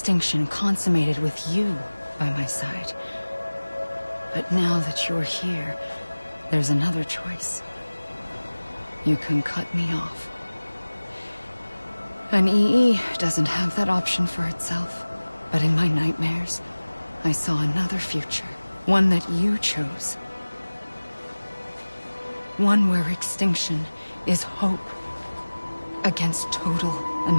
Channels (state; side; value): inverted; both; correlation -1.00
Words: consummated with you by my side. But now that you're here, there's another choice. You can cut me off. An EE doesn't have that option for itself. But in my nightmares, I saw another future. One that you chose. One where extinction is hope against total